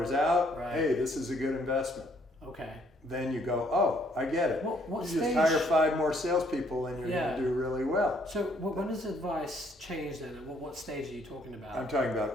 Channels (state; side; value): normal; both; correlation 0.66